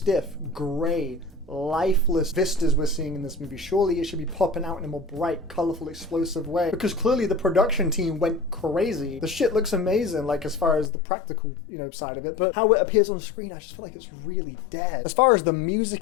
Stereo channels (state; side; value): drops out; right; at 10.9 s